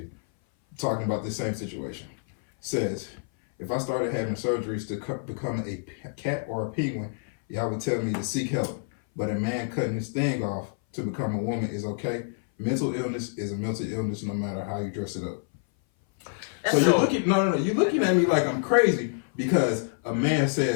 Talking about the same situation. Says, if I started having surgeries to become a cat or a penguin, y'all would tell me to seek help. But a man cutting his thing off to become a woman is okay. Mental illness is a mental illness no matter how you dress it up. So you're looking, you're looking at me like I'm crazy because a man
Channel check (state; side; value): silent; right; 57 dB below the other